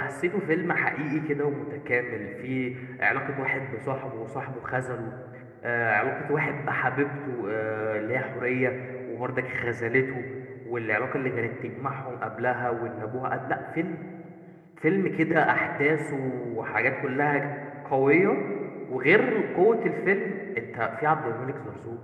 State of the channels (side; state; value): both; identical; correlation 1.00